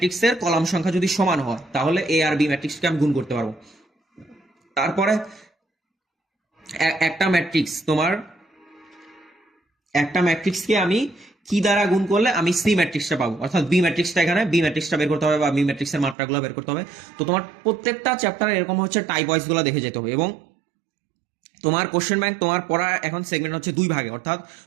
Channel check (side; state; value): left; drops out; at 16.2 s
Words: কলাম সংখ্যা যদি সমান হয় তাহলে এ আর বি ম্যাট্রিক্সকে আমি গুণ করতে পারবো। তারপরে একটা ম্যাট্রিক্স তোমার একটা ম্যাট্রিক্সকে আমি কি দ্বারা গুণ করলে আমি সি ম্যাট্রিক্সটা পাবো, অর্থাৎ বি ম্যাট্রিক্সটা এখানে বি ম্যাট্রিক্সটা বের করতে হবে বা বি ম্যাট্রিক্সের মাত্রাগুলো বের করতে হবে। তো তোমার প্রত্যেকটা চ্যাপ্টারে এরকম হচ্ছে টাইপ ওয়াইজ গুলো দেখে যেতে হবে। এবং তোমার কোশ্চেন ব্যাংক তোমার পড়া এখন সেগমেন্ট হচ্ছে 2 ভাগে, অর্থাৎ